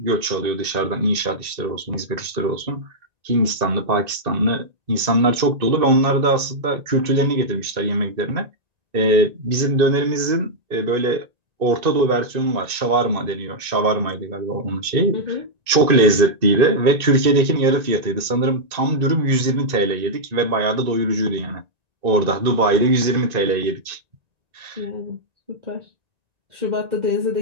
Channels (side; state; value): left; late; 1.9 ms